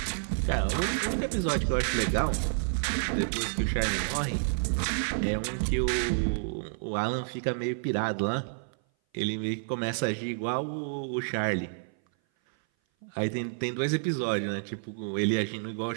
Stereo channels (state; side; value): silent; left; 57 dB below the other